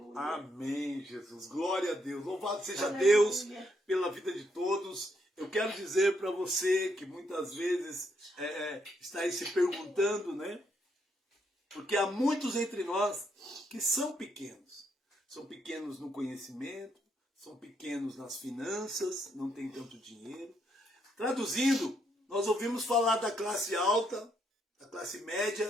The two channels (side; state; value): both; normal; correlation 0.75